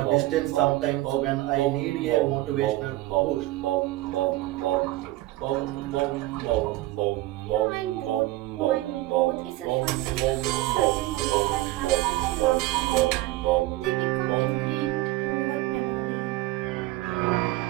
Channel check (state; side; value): quieter; left; 18.1 dB